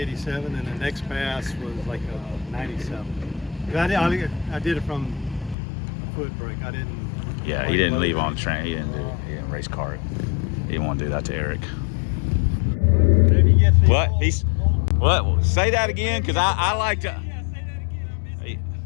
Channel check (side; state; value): right; drops out; at 5.6 s